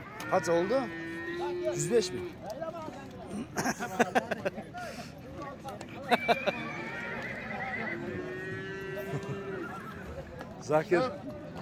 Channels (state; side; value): identical; both; correlation 1.00